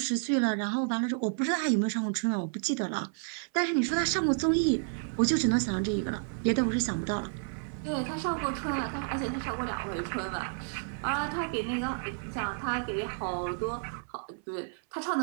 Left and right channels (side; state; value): left; silent; 57 dB below the other